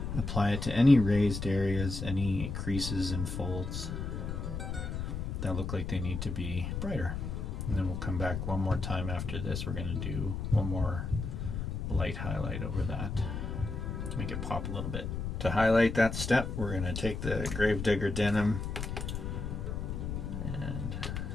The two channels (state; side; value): noise; left; rumble, 4 dB below the sound